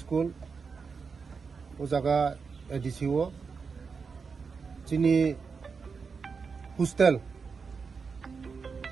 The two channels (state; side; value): quieter; left; 5.3 dB